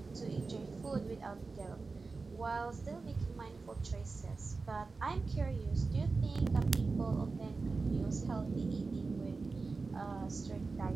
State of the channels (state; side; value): quieter; left; 4.0 dB